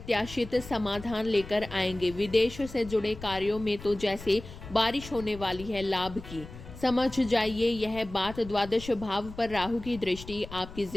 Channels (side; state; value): left; noise; rumble, 14 dB below the sound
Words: समाधान लेकर आएंगे। विदेश से जुड़े कार्यों में तो जैसे बारिश होने वाली है लाभ की। समझ जाइए, यह बात द्वादश भाव पर राहु की दृष्टि आपकी